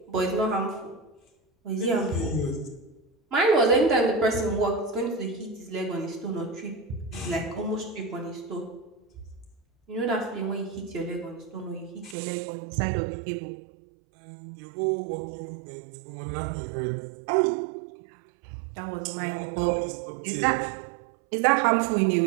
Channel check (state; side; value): drops out; left; at 12.2 s